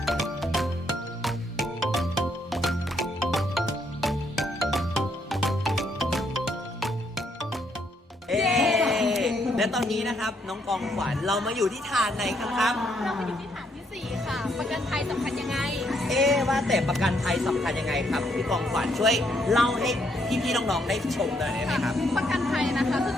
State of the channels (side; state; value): both; normal; correlation 0.73